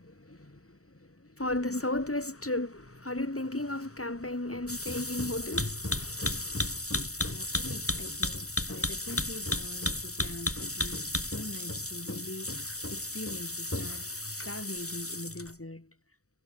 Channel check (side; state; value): right; late; 0.65 ms